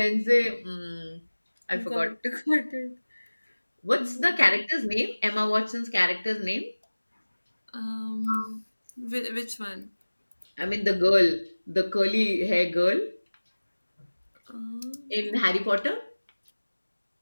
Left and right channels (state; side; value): inverted; both; correlation -1.00